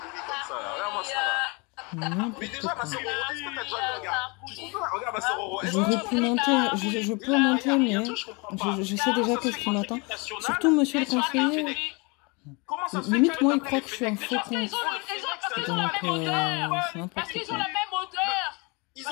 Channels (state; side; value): quieter; right; 29.4 dB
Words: Mais déjà, ma sœur, est-ce que t'as déjà regardé? Regarde, ma sœur Roro. J'aurais pu monter, je peux monter, mais je sais déjà qu'est-ce qui m'attend. Surtout, monsieur le conseiller. Limite, moi, il croit que je suis un faux con. Donc, c'est n'importe quoi. Ils